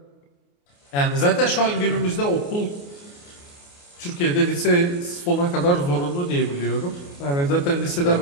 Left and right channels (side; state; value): right; late; 28 ms